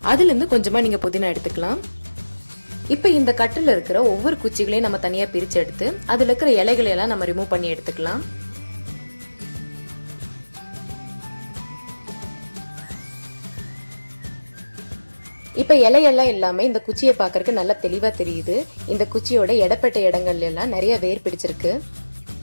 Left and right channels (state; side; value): inverted; both; correlation -1.00